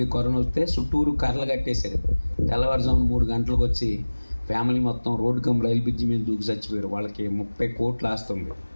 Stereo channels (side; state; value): both; inverted; correlation -1.00